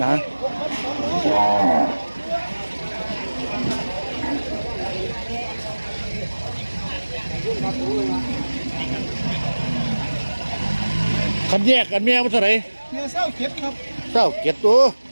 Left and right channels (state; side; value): inverted; both; correlation -1.00